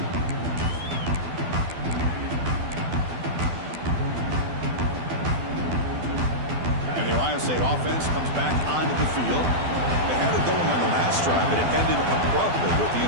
And the Ohio State offense comes back onto the field. They had it going on the last drive, but it ended abruptly with the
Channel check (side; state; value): left; late; 12 ms